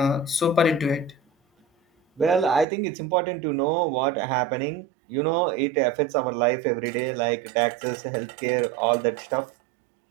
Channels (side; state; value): left; drops out; at 2.7 s